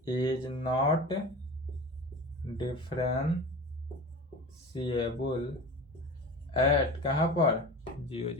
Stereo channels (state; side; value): normal; both; correlation 0.33